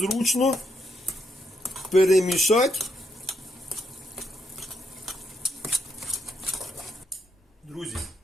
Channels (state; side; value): normal; both; correlation 0.78